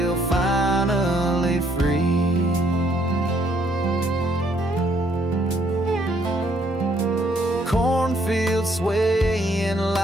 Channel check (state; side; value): normal; both; correlation 0.68